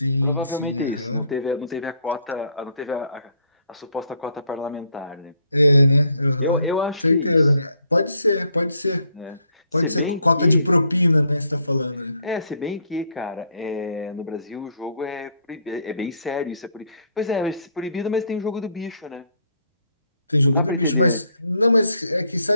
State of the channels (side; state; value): both; inverted; correlation -0.68